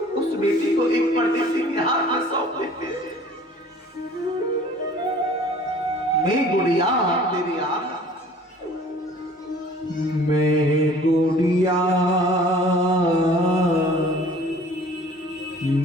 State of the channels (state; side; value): normal; both; correlation 0.49